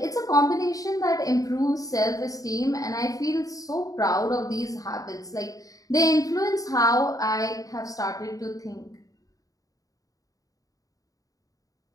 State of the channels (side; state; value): right; late; 0.17 ms